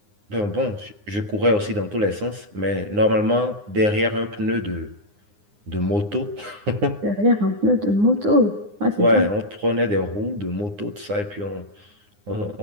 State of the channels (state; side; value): late; left; 9.7 ms